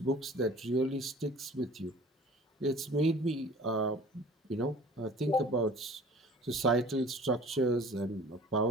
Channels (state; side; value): normal; both; correlation 0.46